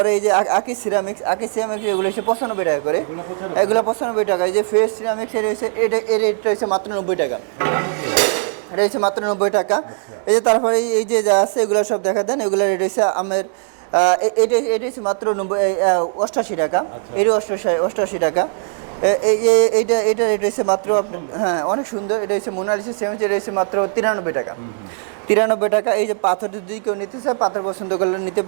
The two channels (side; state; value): left; silent; 66 dB below the other